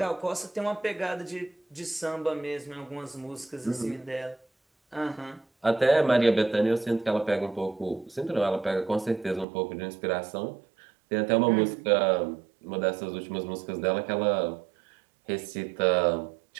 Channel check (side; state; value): left; drops out; at 9.5 s